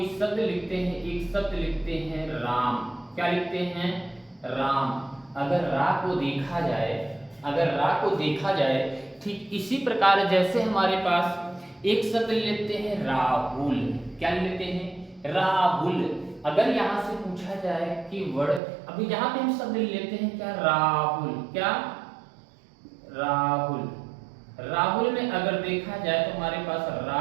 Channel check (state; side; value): drops out; left; at 18.6 s